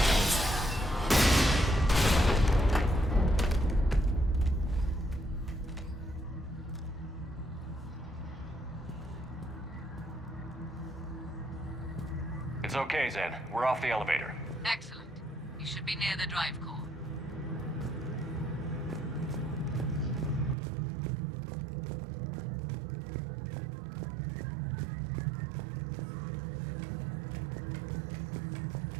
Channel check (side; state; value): left; drops out; at 20.6 s